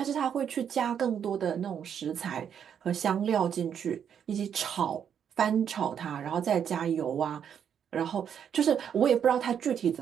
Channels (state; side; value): quieter; left; 8.3 dB